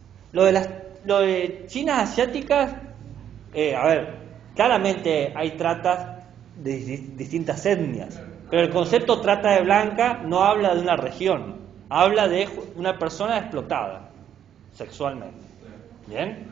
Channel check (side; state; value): left; quieter; 9.7 dB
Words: Lo de chinas asiáticas, claramente hay tratas de distintas etnias, pero el concepto trata de blanca no habla de una región, habla de una persona explotada sexualmente. ¿Bien?